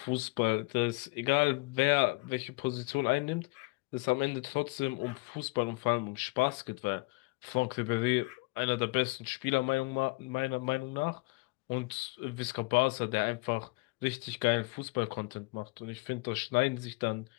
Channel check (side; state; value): right; quieter; 26.0 dB